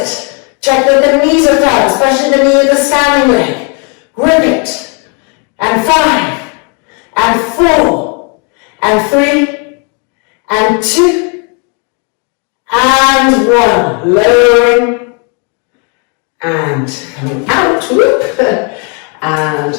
Check that the knees are firm, especially the knee of the standing leg. Grip it. And 5, and 4, and 3, and 2, and 1. Lowering, and coming out, whoop,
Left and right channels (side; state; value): right; quieter; 36.7 dB